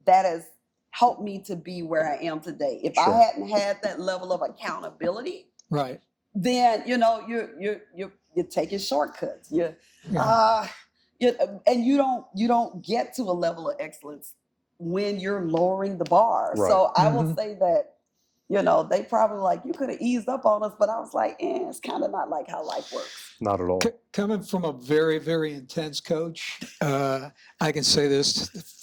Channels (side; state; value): both; identical; correlation 1.00